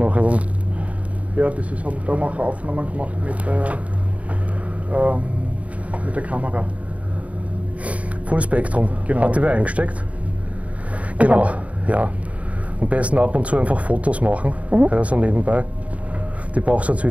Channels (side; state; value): left; late; 0.067 ms